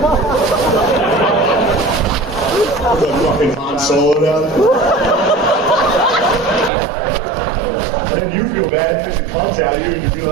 The fucking Han Solo down there. And then you feel bad because it comes out of you and you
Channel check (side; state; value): left; drops out; at 6.7 s